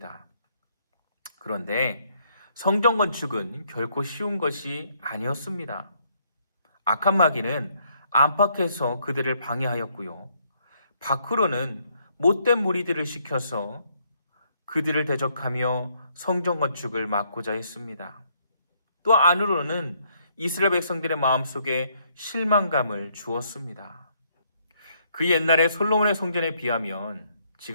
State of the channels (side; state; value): both; inverted; correlation -0.70